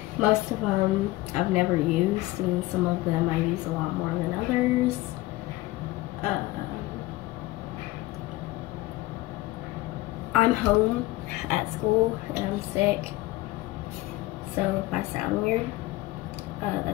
Most of them I've never used, and some of them I use a lot more than others. I'm home at school and I'm sick, so if I sound weird,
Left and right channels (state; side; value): quieter; right; 18.8 dB